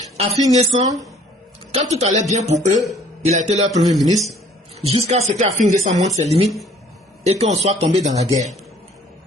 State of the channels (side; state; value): both; normal; correlation 0.57